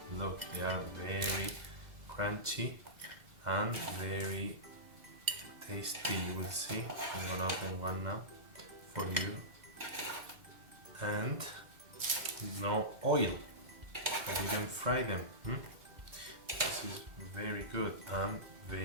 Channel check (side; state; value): left; late; 2.0 ms